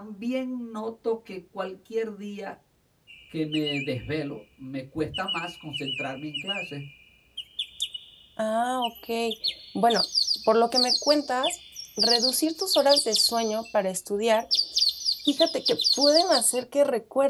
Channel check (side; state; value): both; identical; correlation 1.00